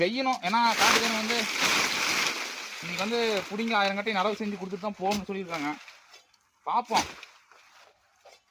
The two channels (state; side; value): identical; both; correlation 1.00